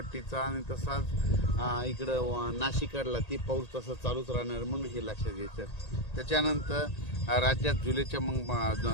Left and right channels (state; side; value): late; right; 1.9 ms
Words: आणि तसाच इकडं नाशिकडला ते पाऊस तसं चालूच राहणार म्हणून हे लक्षात घ्यायचं. त्याच्यानंतर राज्यात जुलैच्या मग